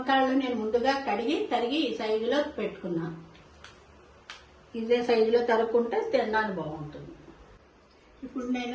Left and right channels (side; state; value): both; identical; correlation 1.00